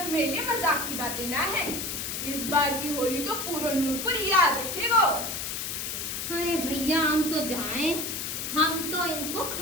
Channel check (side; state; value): left; noise; hiss, 4 dB below the sound